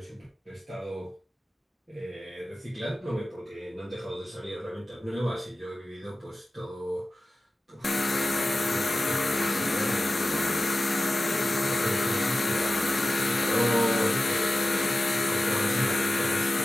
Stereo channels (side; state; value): both; normal; correlation 0.94